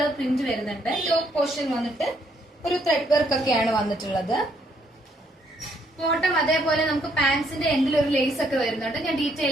പ്രിന്റ് വരുന്നുണ്ട്. യോക്ക് പോർഷൻ വന്നിട്ട് ഒരു ത്രെഡ് വർക്ക് ഒക്കെയാണ് വന്നിട്ടുള്ളത്. ബോട്ടം അതേപോലെ നമുക്ക് പാൻസിന്റെ എൻഡിൽ ഒരു ലേസ് ഒക്കെ വരുന്നുണ്ട്. ഞാൻ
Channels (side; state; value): both; normal; correlation 0.70